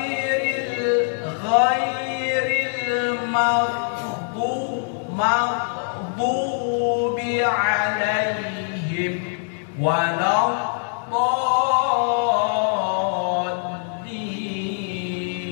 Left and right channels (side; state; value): right; silent; 63 dB below the other